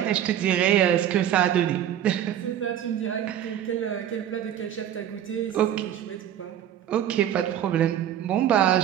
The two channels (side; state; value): left; quieter; 10.6 dB